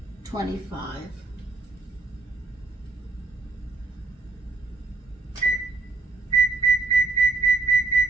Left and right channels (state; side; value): quieter; left; 3.5 dB